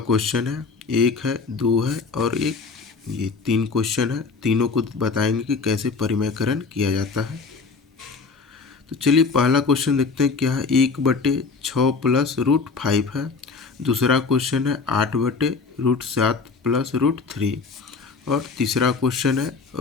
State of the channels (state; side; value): quieter; right; 4.6 dB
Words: है, एक है, दो है और एक। ये 3 क्वेश्चन है, तीनों को बताएंगे कि कैसे परिमेयकरण किया जाता है। तो चलिए पहला क्वेश्चन देखते हैं क्या है। 1/6 प्लस रूट 5 है। दूसरा क्वेश्चन है 8/√7 प्लस √3। और तीसरा क्वेश्चन है